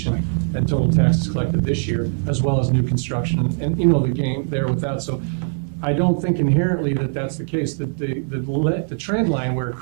and total taxes collected this year, as well as new construction, and the game there with that. So I don't think inherently that that's the case. The trend line where it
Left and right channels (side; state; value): left; silent; digital silence